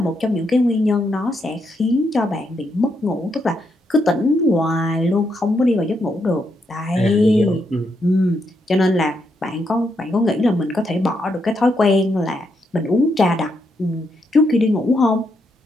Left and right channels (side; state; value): both; normal; correlation 0.79